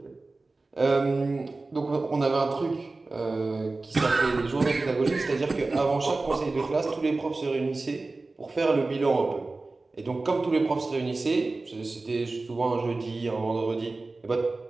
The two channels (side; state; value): left; quieter; 3.4 dB